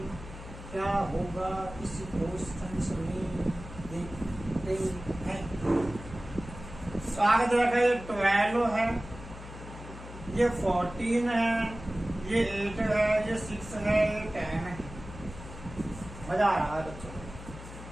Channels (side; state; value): left; noise; hum, 13 dB below the sound